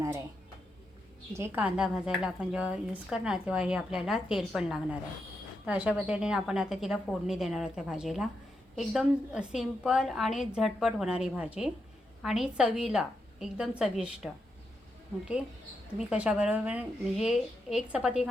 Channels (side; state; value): both; normal; correlation 0.84